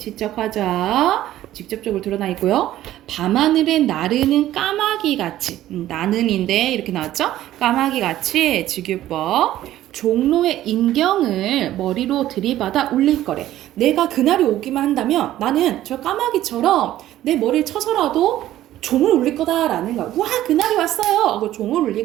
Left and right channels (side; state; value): left; quieter; 13.6 dB